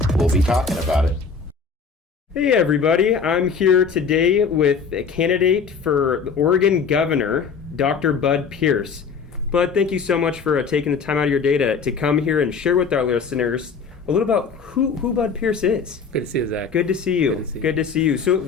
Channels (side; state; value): right; quieter; 5.6 dB